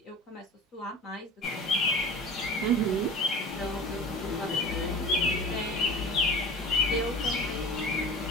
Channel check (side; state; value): both; normal; correlation 0.36